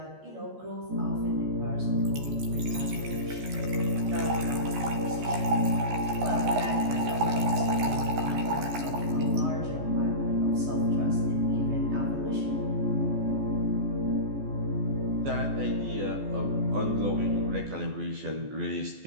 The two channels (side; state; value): left; late; 14 ms